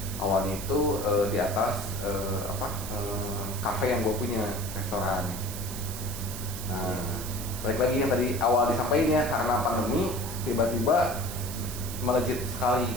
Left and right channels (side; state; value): right; noise; hiss, 9 dB below the sound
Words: Awalnya itu di atas kafe yang gue punya, restoran. Nah balik lagi yang tadi awal disampaikan ya, karena pandemi tiba-tiba melejit sekali